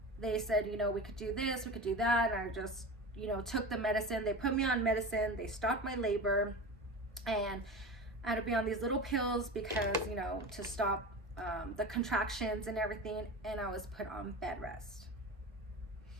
they said, you know, we could do this, we could do that. And I just, you know, took the medicine. They put me on medicine. They stopped my labor. And I had to be on these little pills because, you know, to stop the contractions and everything. And I was put on bed rest.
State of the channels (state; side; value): normal; both; correlation 0.29